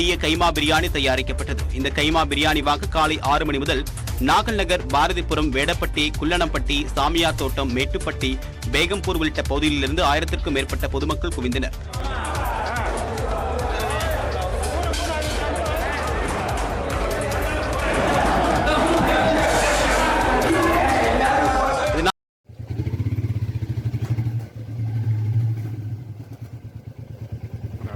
கைமா பிரியாணி தயாரிக்கப்பட்டது. இந்த கைமா பிரியாணி வாங்க காலை 6 மணி முதல் நாகல் நகர், பாரதிபுரம், வேடப்பட்டி, குள்ளனம்பட்டி, சாமியார் தோட்டம், மேட்டுப்பட்டி, பேகம்பூர் உள்ளிட்ட பகுதிகளிலிருந்து 1000க்கும் மேற்பட்ட பொதுமக்கள் குவிந்தனர்.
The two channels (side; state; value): both; identical; correlation 1.00